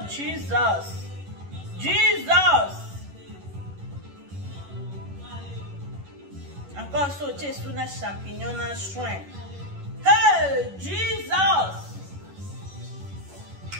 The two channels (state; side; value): late; left; 11 ms